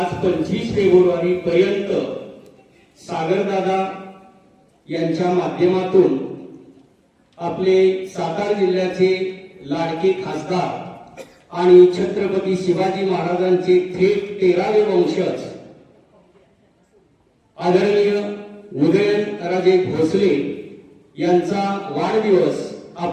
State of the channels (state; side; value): identical; both; correlation 1.00